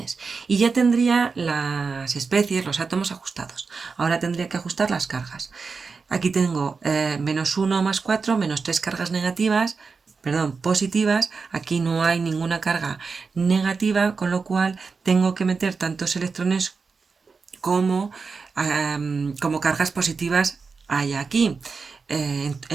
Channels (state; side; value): quieter; left; 4.8 dB